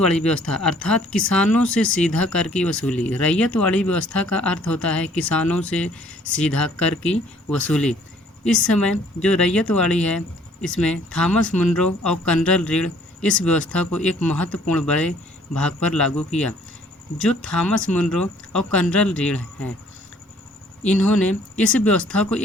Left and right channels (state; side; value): normal; both; correlation 0.59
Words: व्यवस्था अर्थात किसानों से सीधा कर की वसूली। रैयतवाड़ी व्यवस्था का अर्थ होता है किसानों से सीधा कर की वसूली। इस समय जो रैयतवाड़ी है, इसमें थॉमस मुनरो और कर्नल रीड इस व्यवस्था को एक महत्वपूर्ण बड़े भाग पर लागू किया। जो थॉमस मुनरो और कर्नल रीड हैं, इन्होंने इस व्यवस्था को